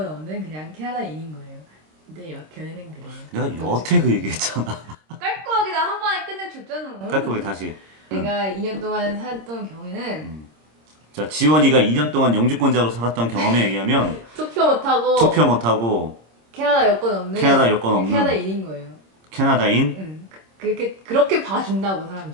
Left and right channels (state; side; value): late; left; 26 ms